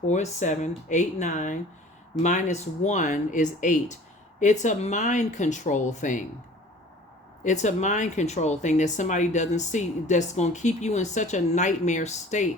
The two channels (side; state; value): both; normal; correlation 0.47